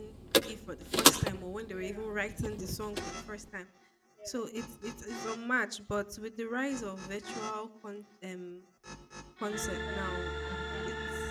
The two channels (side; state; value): both; identical; correlation 1.00